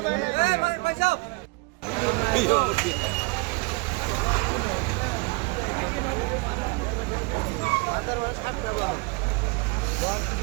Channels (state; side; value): quieter; left; 27.6 dB